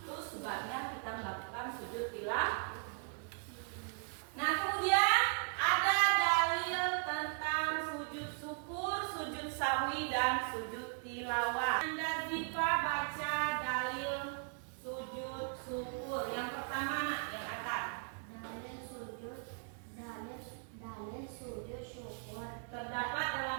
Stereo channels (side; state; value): left; silent; 53 dB below the other